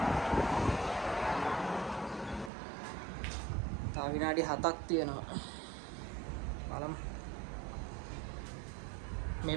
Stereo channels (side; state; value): left; drops out; at 2.5 s